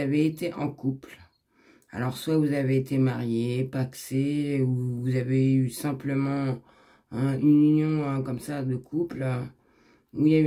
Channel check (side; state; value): both; identical; correlation 1.00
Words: été en couple. Alors soit vous avez été marié, pacsé, ou vous avez eu simplement une union comme ça de couple, où il y a